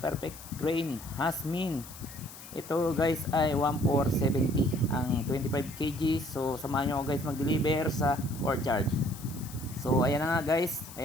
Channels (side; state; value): left; noise; hiss, 16 dB below the sound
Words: grain Hasmin. Ito guys ay 1470 ang 25 kg. So samahan nyo ako guys mag-deliver sa courtyard. So ayan na nga guys,